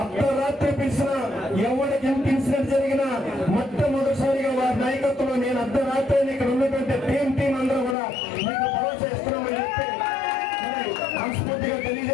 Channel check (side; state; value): right; drops out; at 8.0 s